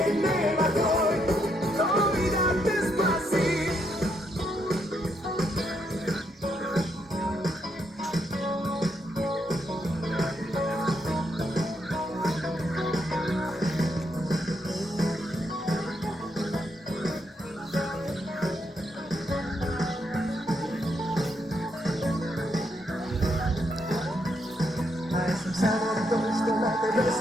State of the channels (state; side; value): normal; both; correlation 0.77